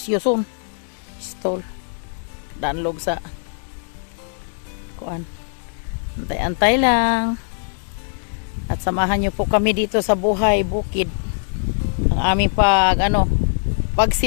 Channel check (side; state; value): right; silent; 65 dB below the other